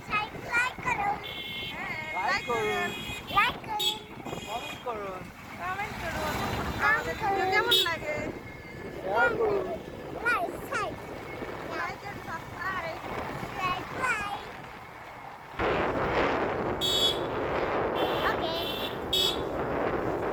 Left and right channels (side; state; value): both; identical; correlation 1.00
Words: করুন, লাইক করুন, কমেন্ট করুন, আমাদের ভিডিও কেমন লাগে শেয়ার করুন। Like and subscribe.